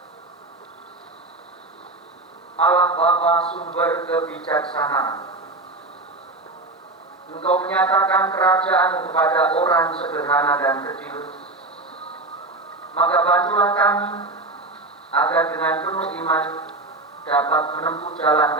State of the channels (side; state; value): left; quieter; 3.0 dB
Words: Allah Bapa sumber kebijaksanaan, Engkau menyatakan kerajaan kepada orang sederhana dan kecil. Maka bantulah kami agar dengan penuh iman dapat menempuh jalan